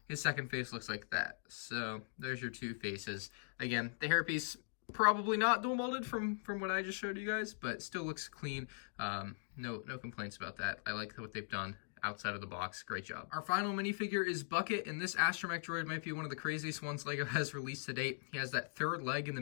His second face looks like that. So there's your 2 faces. Again, the hairpiece, probably not dual molded from what I just showed you guys, but still looks clean. No complaints about that. I like what they've done outside of the box. Great job. Our final minifigure is Bucket, and this astromech droid might be one of the craziest ones LEGO has released to date. He has that 3rd leg in the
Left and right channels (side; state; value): right; silent; digital silence